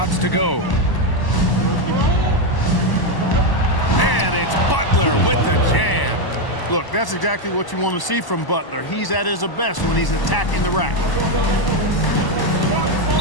to go. And it's Butler with the jam. Look, that's exactly what you want to see from Butler. He's at his best when he's attacking the rack.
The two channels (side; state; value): right; late; 1.0 ms